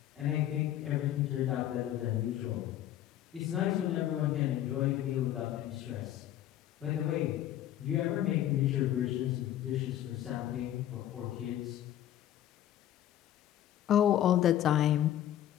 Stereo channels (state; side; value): quieter; right; 12.0 dB